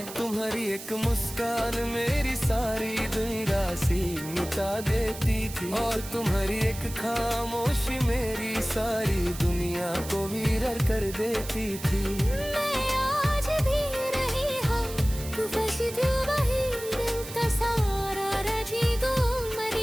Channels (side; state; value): right; noise; hiss, 12 dB below the sound